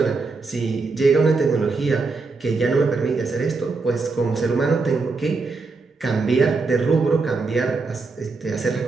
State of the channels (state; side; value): quieter; left; 4.1 dB